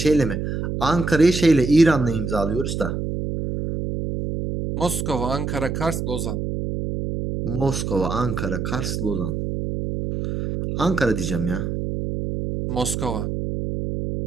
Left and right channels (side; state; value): right; noise; hum, 3 dB below the sound